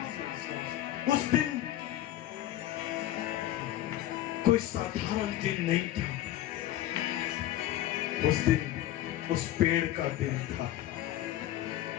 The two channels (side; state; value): right; quieter; 13.4 dB